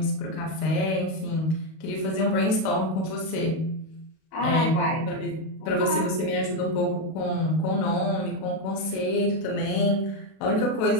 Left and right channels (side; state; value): right; late; 32 ms